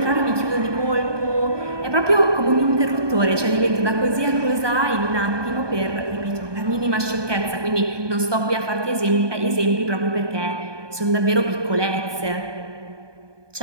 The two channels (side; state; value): left; late; 1.2 ms